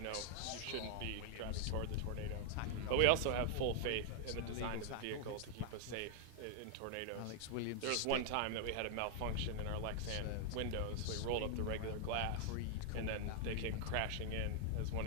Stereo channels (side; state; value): both; different; correlation 0.00